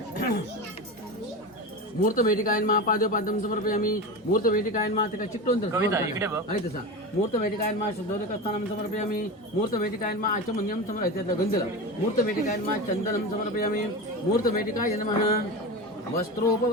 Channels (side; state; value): both; normal; correlation 0.24